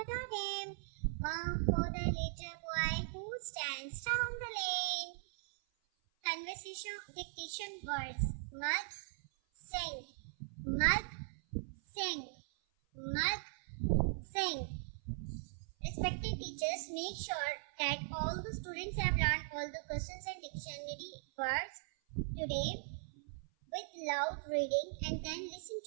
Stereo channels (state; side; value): silent; left; 51 dB below the other